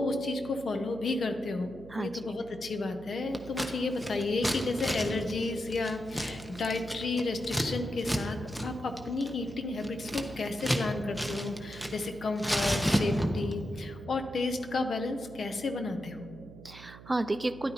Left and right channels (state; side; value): noise; right; hum, 16 dB below the sound